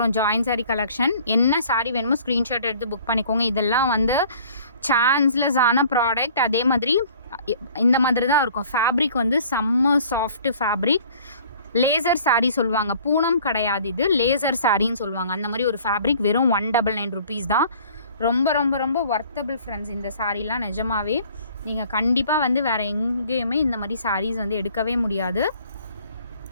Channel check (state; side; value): inverted; both; correlation -0.53